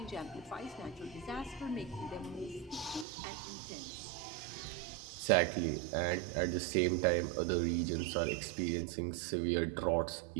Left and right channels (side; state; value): left; drops out; at 3.1 s